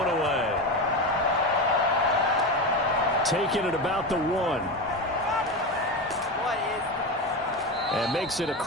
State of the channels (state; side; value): normal; both; correlation 0.20